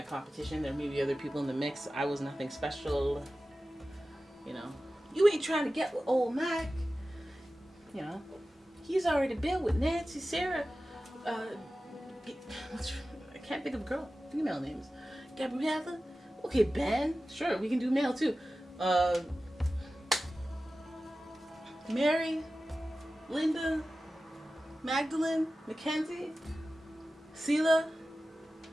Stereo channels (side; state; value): both; normal; correlation 0.95